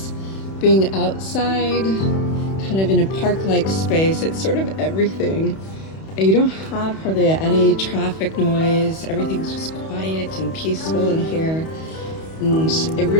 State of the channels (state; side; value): late; right; 31 ms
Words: being outside, kind of in a park-like space, it's sort of everything. You don't have hardly any traffic noise, everything's just quiet and peaceful in here. And it